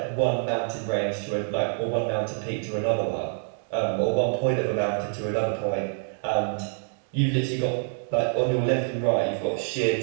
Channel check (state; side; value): silent; left; 61 dB below the other